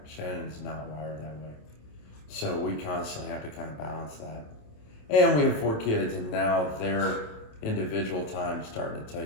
Shannon's not wired that way. So we constantly have to kind of balance that. And we have 4 kids, and now their individual time is starting to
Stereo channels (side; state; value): right; late; 27 ms